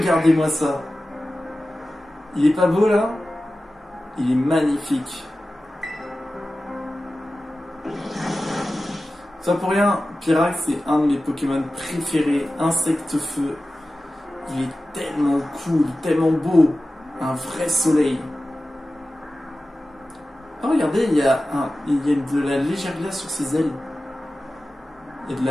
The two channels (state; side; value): normal; both; correlation 0.95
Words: ça. Il est pas beau là? Il est magnifique. Ça pour rien, Pyrax c'est un de mes Pokémon préférés, Insecte-Feu. Il est tellement cool, tellement beau. Un vrai soleil. Oh regardez, il y a de la légère glace sur ses ailes. Il y